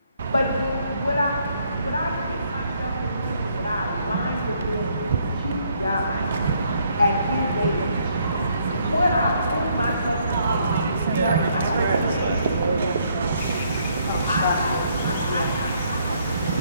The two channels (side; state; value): both; inverted; correlation -0.69